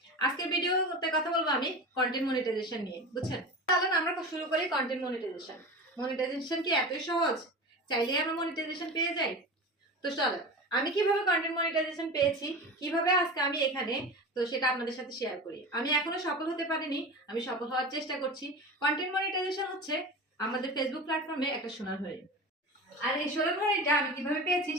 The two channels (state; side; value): normal; both; correlation 0.30